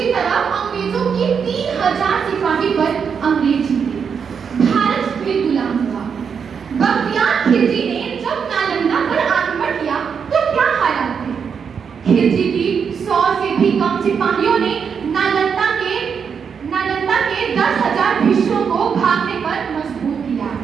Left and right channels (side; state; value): left; quieter; 6.6 dB